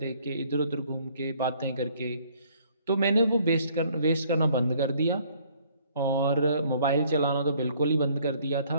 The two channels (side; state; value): both; inverted; correlation -0.61